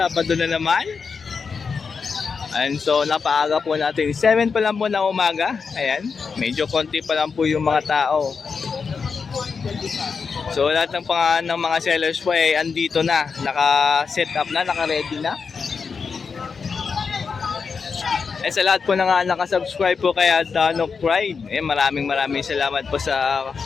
na naman. And so napaaga po natin, 7 pa lang po na umaga. Ayan, medyo konti pa lang po yung mga tao. So lahat ng mga sellers po ay andito na, naka-set up na, naka-ready na. Eh sa lahat po na nga nakasubscribe po kay Danok Pride, maraming salamat po sa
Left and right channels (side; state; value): right; quieter; 5.4 dB